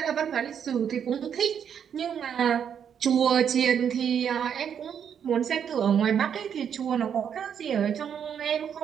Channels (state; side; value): quieter; left; 8.1 dB